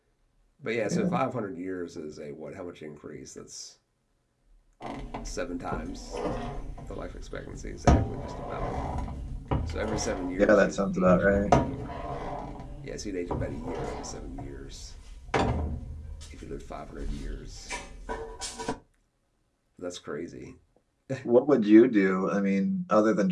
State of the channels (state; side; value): identical; both; correlation 1.00